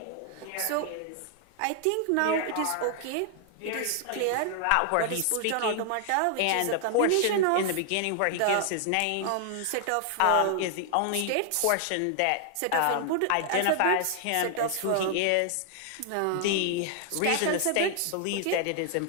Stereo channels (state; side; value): different; both; correlation 0.00